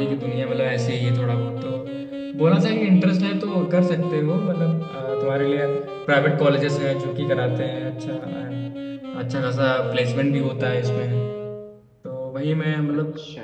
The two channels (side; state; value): both; identical; correlation 1.00